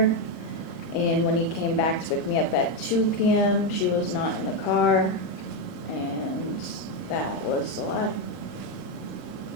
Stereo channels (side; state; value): right; late; 39 ms